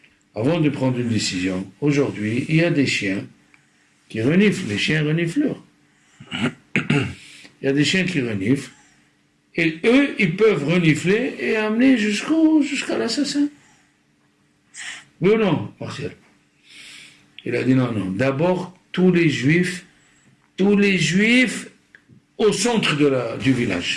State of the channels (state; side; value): identical; both; correlation 1.00